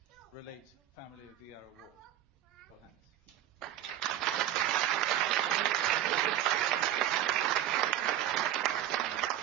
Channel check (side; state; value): left; quieter; 12.0 dB